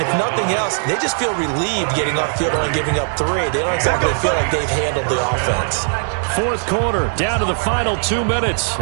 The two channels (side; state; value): left; silent; 67 dB below the other